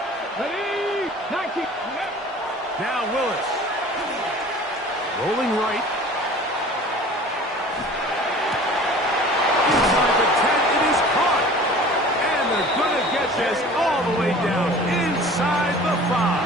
Now Willis. Rolling right. Inside the 10, it is caught. And they're going to get this all the way down inside the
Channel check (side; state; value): both; normal; correlation 0.44